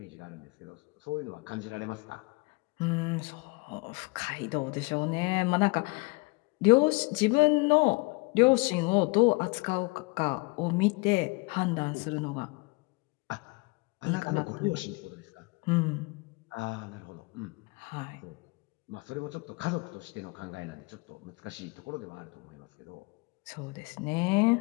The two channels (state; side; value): quieter; right; 27.5 dB